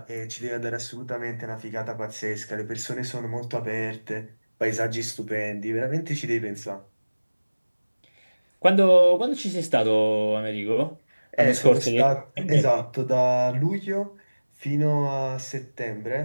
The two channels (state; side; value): inverted; both; correlation -1.00